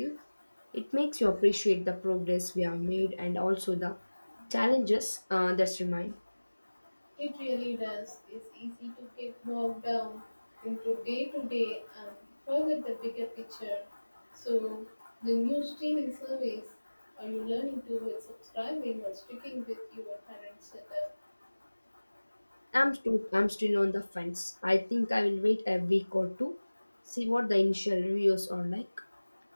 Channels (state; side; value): inverted; both; correlation -1.00